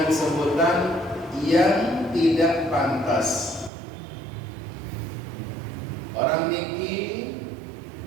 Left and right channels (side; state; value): left; drops out; at 3.7 s